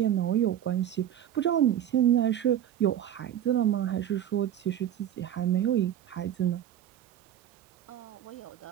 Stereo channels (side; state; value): left; quieter; 10.8 dB